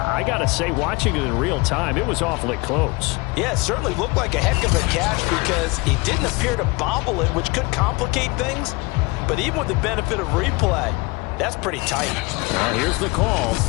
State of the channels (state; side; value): quieter; right; 25.8 dB